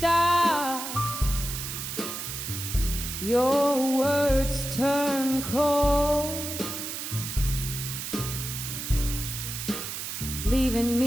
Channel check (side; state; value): right; noise; hiss, 6 dB below the sound